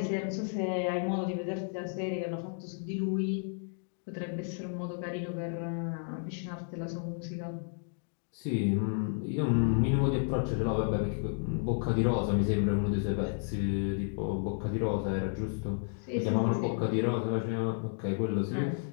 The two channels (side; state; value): right; silent; 56 dB below the other